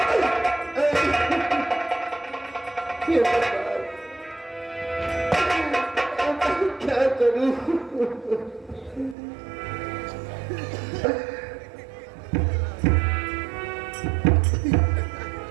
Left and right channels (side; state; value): left; drops out; at 9.2 s